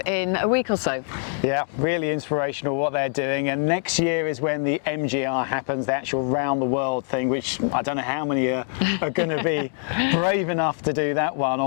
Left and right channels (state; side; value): silent; right; 63 dB below the other